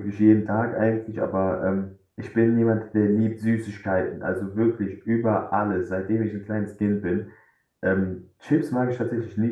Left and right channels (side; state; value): both; identical; correlation 1.00